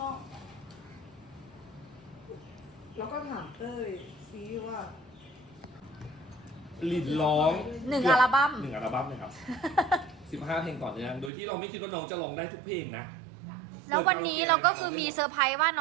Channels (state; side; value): drops out; left; at 11.3 s